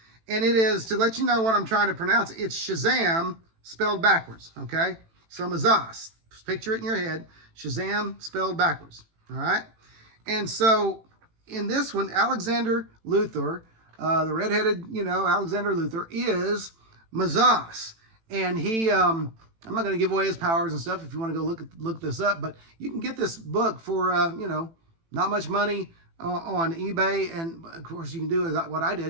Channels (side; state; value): left; late; 18 ms